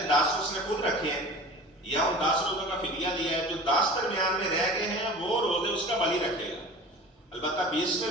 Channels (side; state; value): both; normal; correlation 0.39